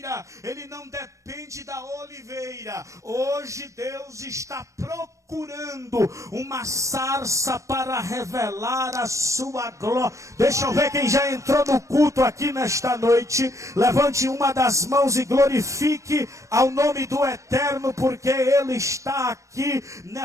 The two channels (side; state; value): left; late; 0.15 ms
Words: ele não depende da oliveira. Hoje Deus está procurando uma sarça para revelar a sua glória. Deixa eu ver quem já entrou no culto aqui nesta noite. Levante uma das mãos e glorifique ao nome do Eterno, porque Ele está aqui